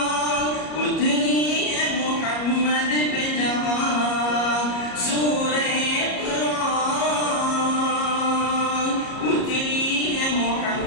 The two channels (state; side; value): late; right; 34 ms